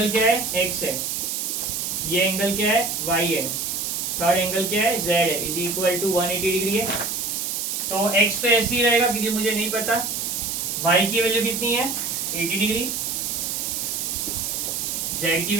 क्या है x है, ये एंगल क्या है y है, थर्ड एंगल क्या है z है, इज इक्वल टू 180 डिग्री है। तो x तो ऐसे ही रहेगा क्योंकि मुझे नहीं पता, y की वैल्यू कितनी है 80 डिग्री, z की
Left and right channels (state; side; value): noise; right; hiss, 2 dB below the sound